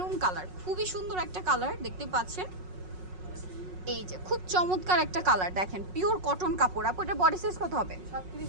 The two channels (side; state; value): left; late; 5.5 ms